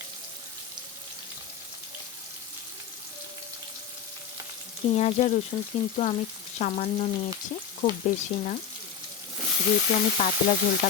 পেঁয়াজ আর রসুন কিন্তু আমি সামান্য নিয়েছি, খুব বেশি না, যেহেতু আমি পাতলা ঝোলটা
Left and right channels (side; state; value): right; quieter; 7.5 dB